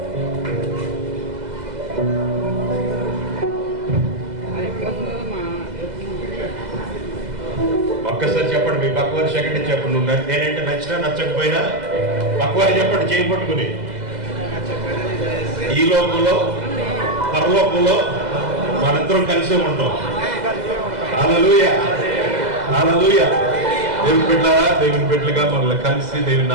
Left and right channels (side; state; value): left; late; 2.0 ms